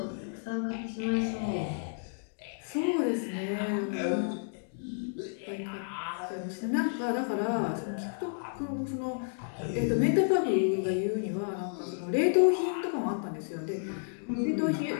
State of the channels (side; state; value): right; silent; digital silence